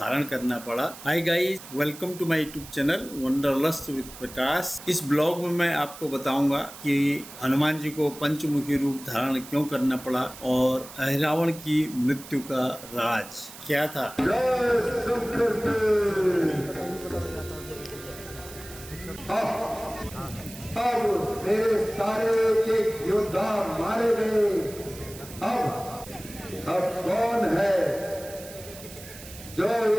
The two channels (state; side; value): noise; right; hiss, 16 dB below the sound